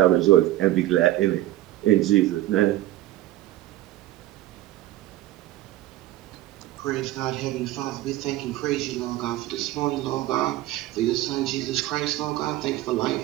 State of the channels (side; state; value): left; quieter; 15.5 dB